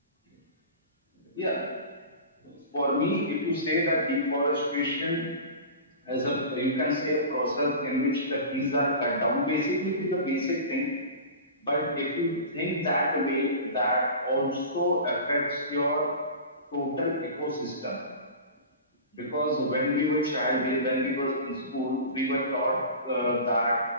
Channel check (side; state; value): both; inverted; correlation -0.34